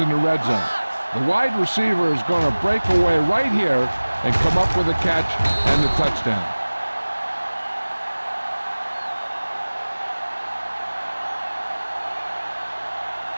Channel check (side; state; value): both; inverted; correlation -1.00